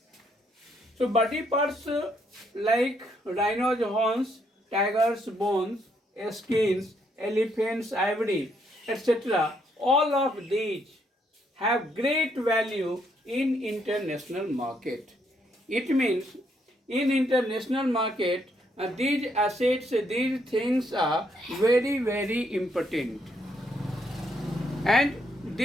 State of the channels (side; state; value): both; normal; correlation 0.73